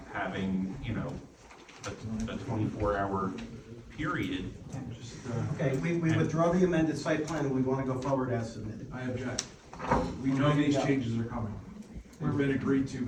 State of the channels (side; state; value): both; identical; correlation 1.00